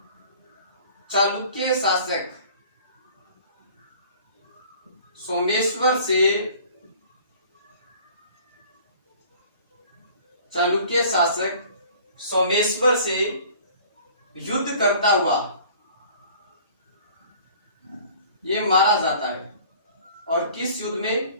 चालुक्य शासक सोमेश्वर से, चालुक्य शासक सोमेश्वर से युद्ध करता हुआ ये मारा जाता है। और किस युद्ध में?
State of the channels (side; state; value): both; inverted; correlation -0.49